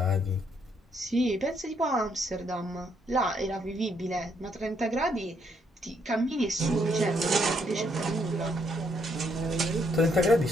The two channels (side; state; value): both; normal; correlation 0.73